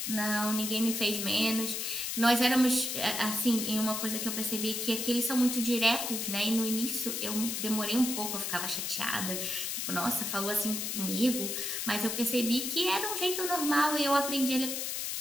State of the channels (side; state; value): left; noise; hiss, 2 dB below the sound